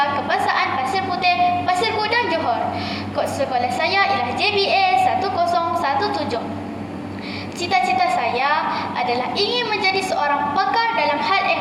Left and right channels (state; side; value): identical; both; correlation 1.00